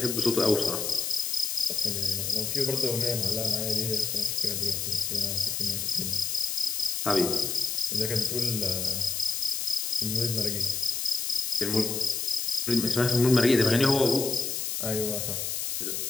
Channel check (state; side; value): noise; left; hiss, 2 dB below the sound